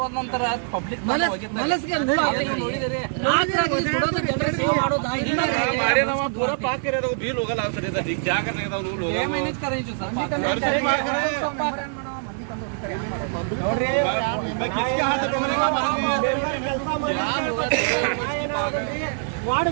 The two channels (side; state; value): left; silent; 57 dB below the other